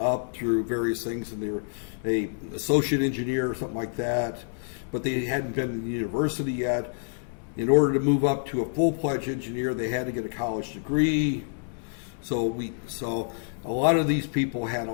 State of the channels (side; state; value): right; silent; 60 dB below the other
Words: through various things, and they were a associate engineer or something like that, but they hadn't been in university yet. In order to move up to a full-fledged engineer, they had to get a college degree. So a lot of these people had a